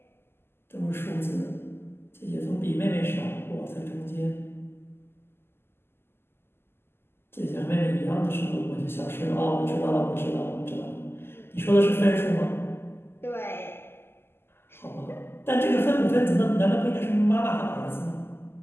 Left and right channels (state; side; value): late; right; 0.12 ms